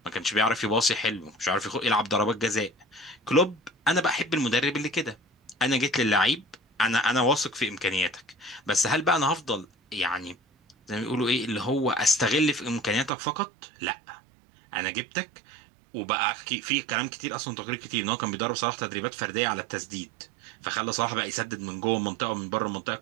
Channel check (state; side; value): drops out; left; at 13.1 s